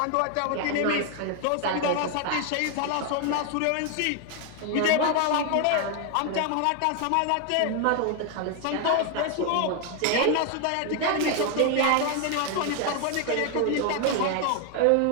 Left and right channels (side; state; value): both; different; correlation 0.00